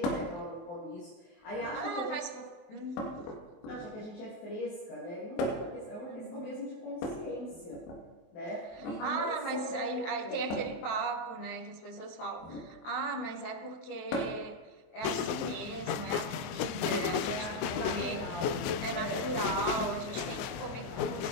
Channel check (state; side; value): late; right; 24 ms